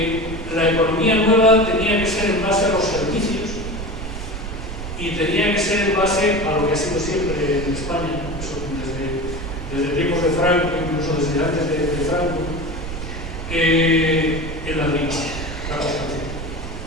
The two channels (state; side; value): noise; right; rumble, 7 dB below the sound